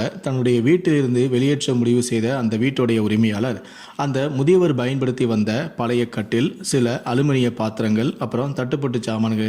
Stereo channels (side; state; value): both; identical; correlation 1.00